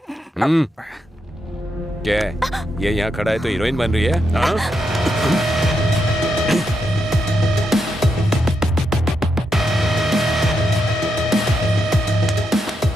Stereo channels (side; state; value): both; normal; correlation 0.83